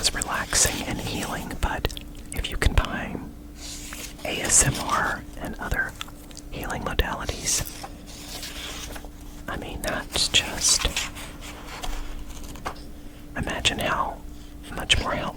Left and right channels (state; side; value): identical; both; correlation 1.00